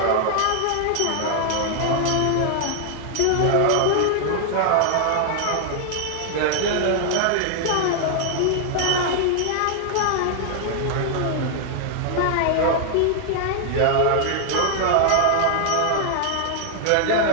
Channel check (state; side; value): different; both; correlation 0.00